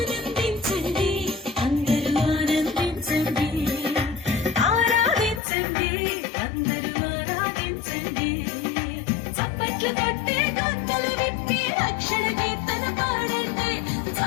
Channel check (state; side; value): drops out; right; at 5.4 s